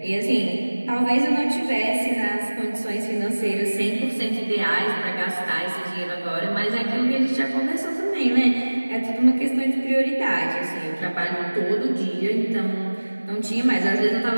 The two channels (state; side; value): inverted; both; correlation -1.00